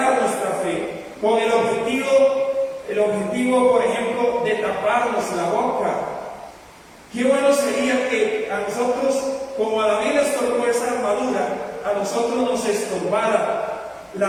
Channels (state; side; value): identical; both; correlation 1.00